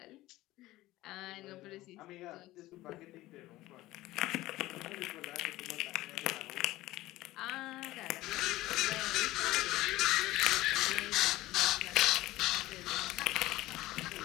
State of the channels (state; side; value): quieter; right; 17.3 dB